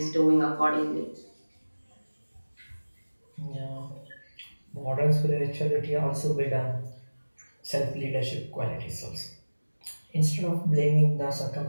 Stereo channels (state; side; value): inverted; both; correlation -1.00